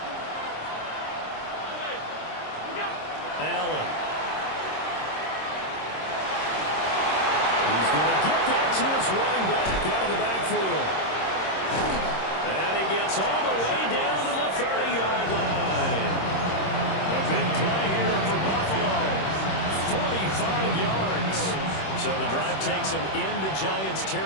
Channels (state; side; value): late; right; 26 ms